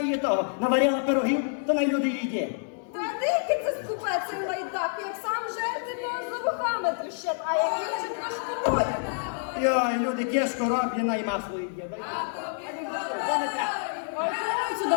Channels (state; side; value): silent; right; digital silence